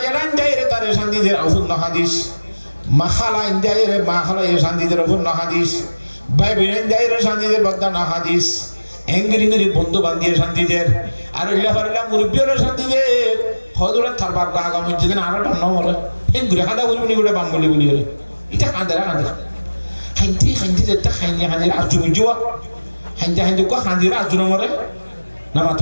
জানান যায় রে তারে শান্তিদের অপূর্ণ হাদিস মাখালা ইন্দিয়ায় রে মাখালা এ শান্তিদের অপূর্ণ হাদিস ভাই বোন যায় রে শান্তিদের বদান হাদিস এঙ্গিরি বন্ধু বান্ধিয়ে শান্তিদের আর ইল্লা মুরব্বিয়র শান্তিদের হদুরা থারবার গাগা মসজিদে আর বান্ন বলে এঙ্গুরি হাদা বলি গুড়ে বাঙ্গলি বলি রে এটা কাঁদারা খাইতে যেতে খাইনি আর জুয়া হাইতে কো হাঁদিরা আজুন মরে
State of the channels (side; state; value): both; inverted; correlation -1.00